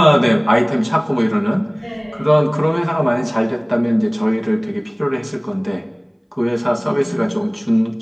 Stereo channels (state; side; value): identical; both; correlation 1.00